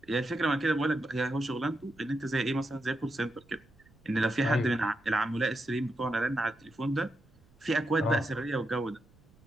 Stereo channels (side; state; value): right; noise; rumble, 29 dB below the sound